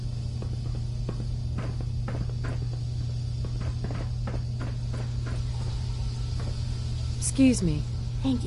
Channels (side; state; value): both; identical; correlation 1.00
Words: Excuse me. Thank